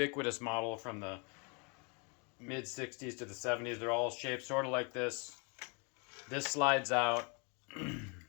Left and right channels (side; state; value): right; quieter; 34.2 dB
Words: model from the mid-60s to the 70s. They're all shaped sort of like this. This slides out,